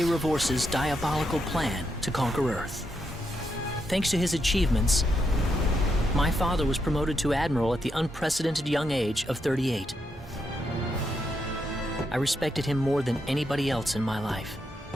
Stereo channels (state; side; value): normal; both; correlation 0.81